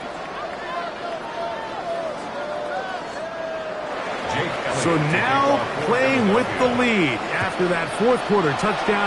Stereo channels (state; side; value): identical; both; correlation 1.00